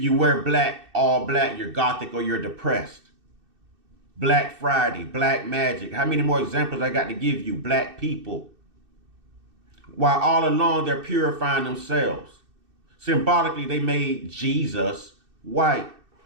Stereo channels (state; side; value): late; left; 2.6 ms